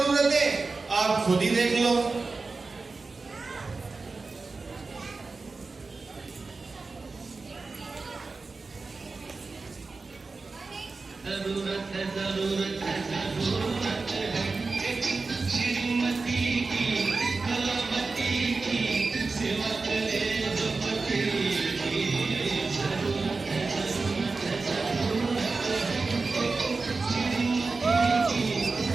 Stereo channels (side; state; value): left; quieter; 4.0 dB